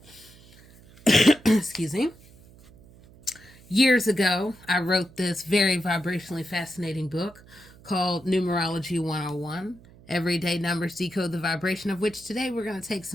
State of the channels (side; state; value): right; noise; hum, 24 dB below the sound